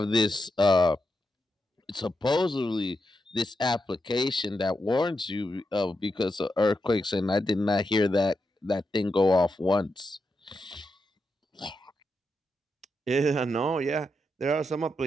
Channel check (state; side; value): normal; both; correlation 0.86